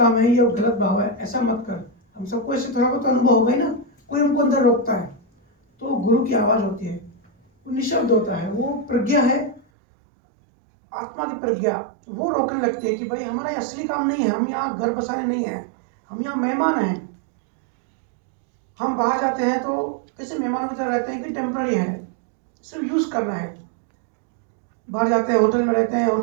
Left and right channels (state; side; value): drops out; left; at 9.6 s